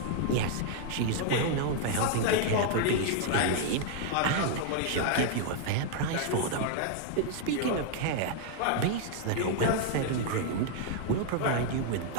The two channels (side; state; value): both; different; correlation 0.00